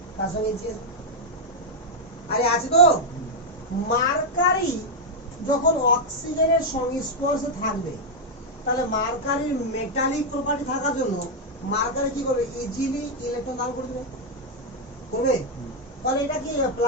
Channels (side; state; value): both; normal; correlation 0.00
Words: তার সঙ্গে আরে আছে তো। মার্কারি যখন অক্সিজেনের সংস্পর্শে থাকবে, তাহলে মার্কারির মেটালিক প্রপার্টি থাকার জন্য মার্কারি কি করবে? ইজিলি ইলেকট্রন দান করে দেবে, করবে। তাহলে এটা কি হবে?